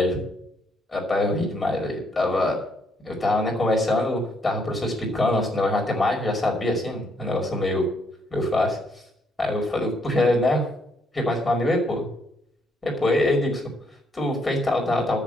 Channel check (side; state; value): both; normal; correlation 0.72